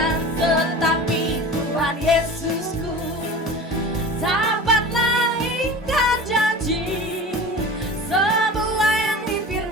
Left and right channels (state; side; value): normal; both; correlation 0.36